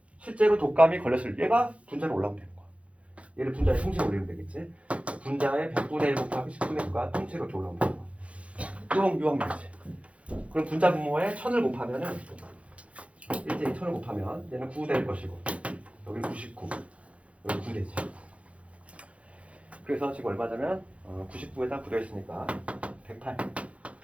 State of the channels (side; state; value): left; late; 0.063 ms